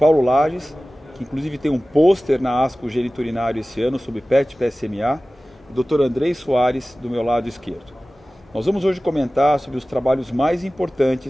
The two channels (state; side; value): normal; both; correlation 0.97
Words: Lages, que inclusive tem um pôster na ASCO Geniturinário esse ano sobre PET-PSMA, e Dr. Andrei Soares, do meu lado esquerdo. Nós vamos hoje comentar sobre os trabalhos mais